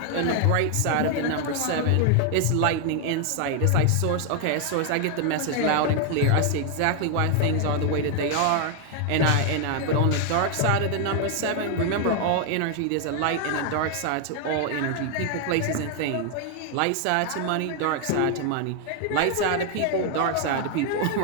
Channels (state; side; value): different; both; correlation 0.00